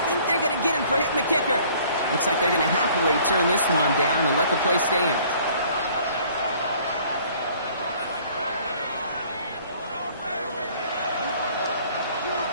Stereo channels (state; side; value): inverted; both; correlation -0.55